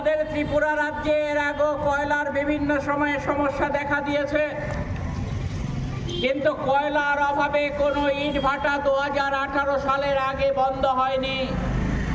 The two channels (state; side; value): identical; both; correlation 1.00